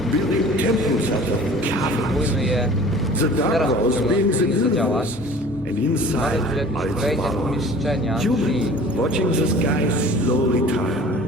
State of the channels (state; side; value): normal; both; correlation 0.45